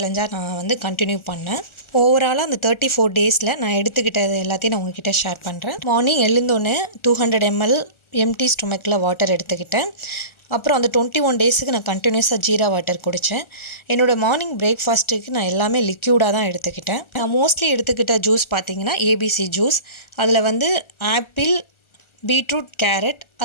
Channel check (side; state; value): right; late; 1.4 ms